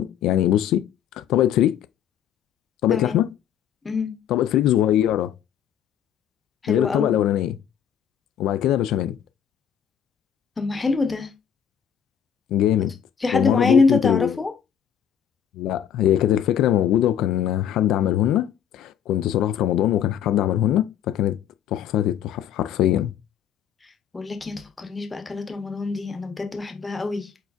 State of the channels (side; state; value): right; quieter; 8.8 dB